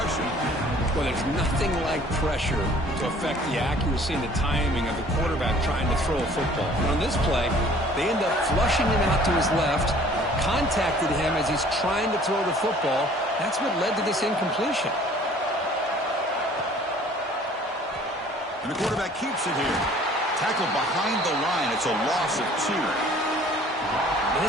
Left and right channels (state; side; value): normal; both; correlation 0.53